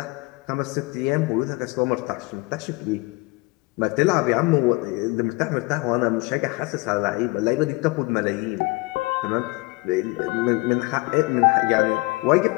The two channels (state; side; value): quieter; right; 24.7 dB